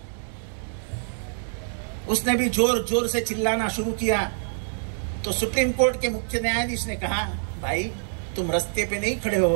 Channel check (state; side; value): silent; left; digital silence